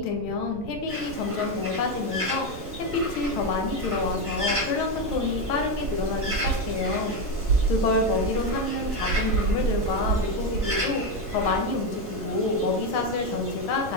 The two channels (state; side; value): noise; right; rumble, 13 dB below the sound